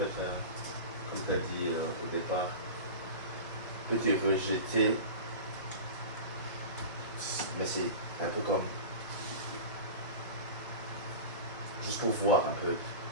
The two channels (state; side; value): inverted; both; correlation -0.30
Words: être, comme tu as dit au départ, peut te rejeter, mais c'est un peu comme, juste pour voir un peu,